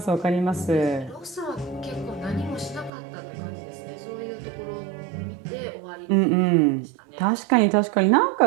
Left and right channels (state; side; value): drops out; left; at 2.9 s